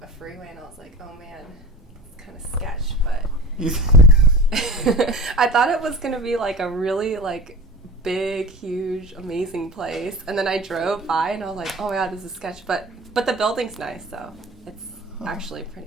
a freeway, and I was like, oh man, it's kind of sketch, but I thought it was gonna be like a really like big, huge, amazing place, and then I drove by and I was like, oh my god, this is sketch, but the building's nice, so it's actually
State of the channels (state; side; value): normal; both; correlation 0.34